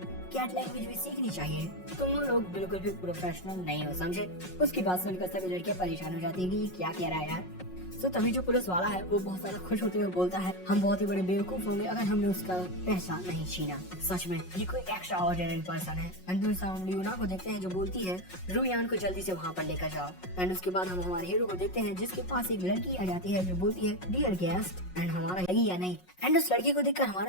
कैट लैंग्वेज भी सीखनी चाहिए, तुम लोग बिल्कुल भी प्रोफेशनल नहीं हो समझे। उसकी बात सुनकर सभी लड़कियां परेशान हो जाती है कि ये क्या कह रहा है यार। तो तभी जो पुलिस वाला है वो बहुत ज्यादा खुश होते हुए बोलता है हम बहुत ही बड़े बेवकूफ होंगे अगर हमने उसका पैसा नहीं छीना। सच में ये कोई एक्स्ट्रा ऑर्डिनरी पर्सन है। एंड हम ल्यूना को देखते हैं जो बोलती है रुयान को जल्दी से वहाँ पर लेकर जाओ। एंड उसके बाद हम हमारे हीरो को देखते हैं जिसके पास एक लड़की आ जाती है जो बोलती है डियर गेस्ट। एंड हमारा लगी या नहीं। एंड उस लड़की को देखकर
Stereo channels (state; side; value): late; right; 5.5 ms